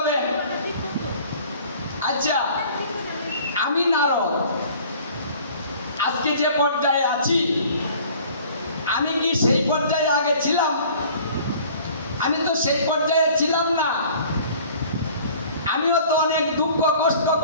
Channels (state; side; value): inverted; both; correlation -0.50